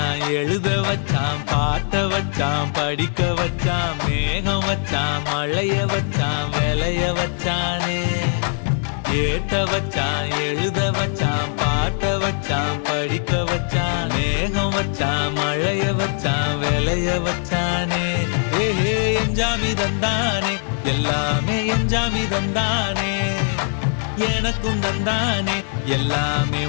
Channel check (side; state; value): right; silent; 56 dB below the other